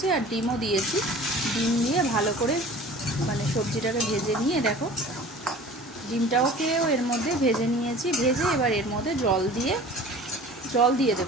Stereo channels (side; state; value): both; normal; correlation 0.43